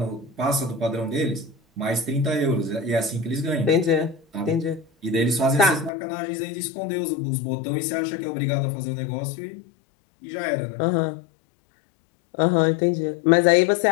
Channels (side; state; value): right; drops out; at 5.9 s